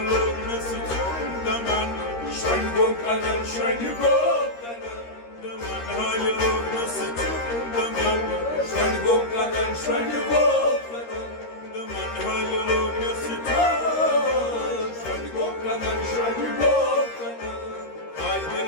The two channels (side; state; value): right; late; 13 ms